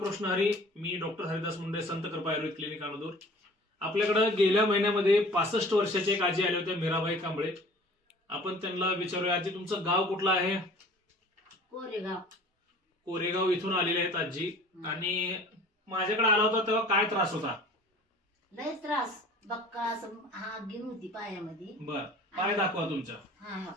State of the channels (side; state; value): both; normal; correlation 0.47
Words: हरी. मी डॉक्टर हरिदास मुंडे, संत कृपा आयुर्वेद क्लिनिक अनदूर. आपल्याकडे गेल्या महिन्यामध्ये 65 वर्षाची एक आजी आल्या होत्या, मीराबाई कांबळे. आपण त्यांना विचारूया, आजी तुमचं गाव कुठलं आहे? कोरेगाव इथून आलेले आहेत आजी. आणि माझ्याकडे आला होता तेव्हा काय त्रास होता? लय त्रास, बक्का असं हा गिन होती पायामध्ये. बर, पाय दाखवा तुमच्या. हा